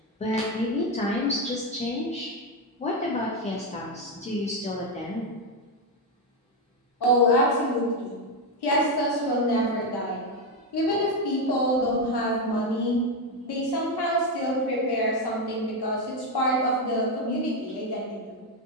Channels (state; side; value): normal; both; correlation 0.07